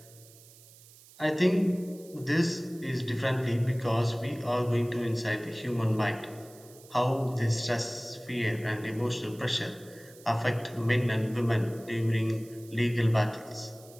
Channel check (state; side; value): noise; right; hiss, 23 dB below the sound